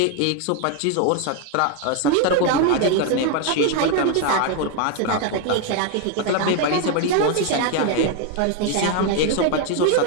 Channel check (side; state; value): both; different; correlation 0.01